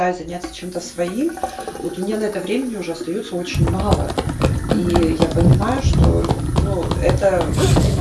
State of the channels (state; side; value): identical; both; correlation 1.00